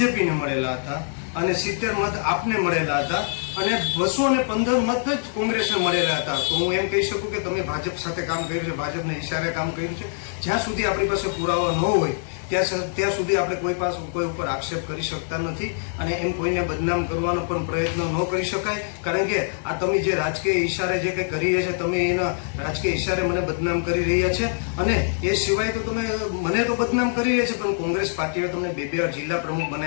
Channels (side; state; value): right; silent; 63 dB below the other